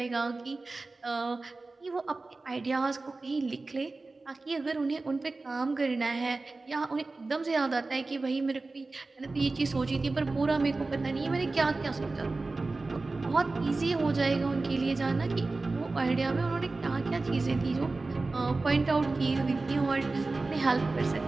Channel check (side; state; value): left; quieter; 3.5 dB